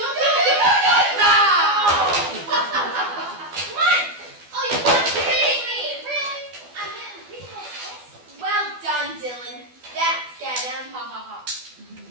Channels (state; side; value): late; left; 12 ms